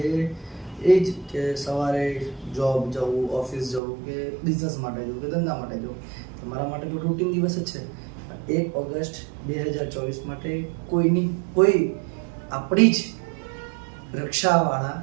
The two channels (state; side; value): drops out; left; at 3.8 s